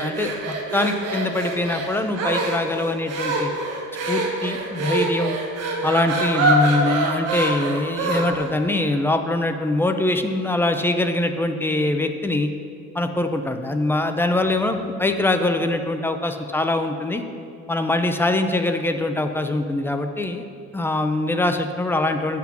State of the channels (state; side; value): normal; both; correlation 0.52